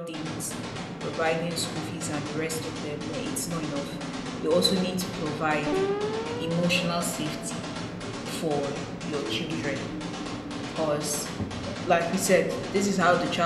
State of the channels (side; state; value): both; identical; correlation 1.00